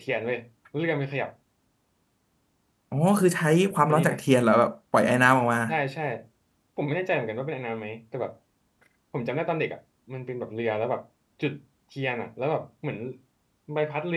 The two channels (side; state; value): both; identical; correlation 1.00